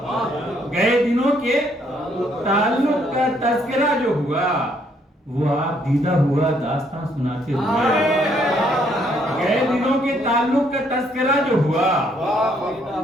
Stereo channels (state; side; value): normal; both; correlation 0.69